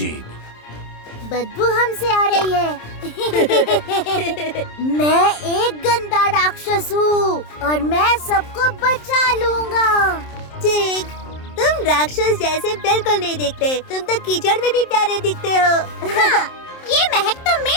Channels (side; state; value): right; late; 27 ms